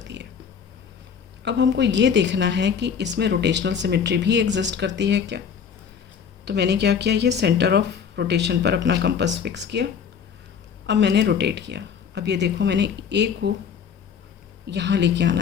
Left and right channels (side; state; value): right; quieter; 7.1 dB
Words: है. अब हमको ये देखना है कि इसमें रोटेशनल सिमेट्री भी एग्जिस्ट करती है क्या. तो मैंने क्या किया, ये सेंटर ऑफ रोटेशन पर अपना कंपास फिक्स किया. अब मैंने रोटेट किया. अब ये देखो, मैंने ए को यहाँ लेके आना